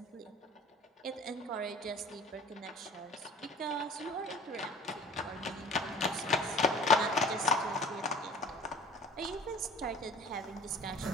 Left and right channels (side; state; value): both; normal; correlation 0.45